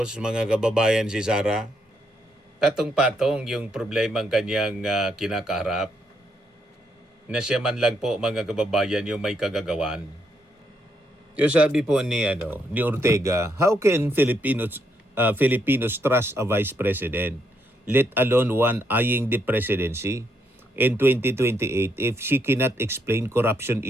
mga kababayan si Sara. Patong-patong yung problemang kanyang kinakaharap. Na siya man lang po mga kababayan yung may kagagawan. Yung sabi po ni Ortega, how can Filipinos trust a vice president, let alone one eyeing the presidency in 2028 if she cannot explain corruption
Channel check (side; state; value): both; normal; correlation 0.76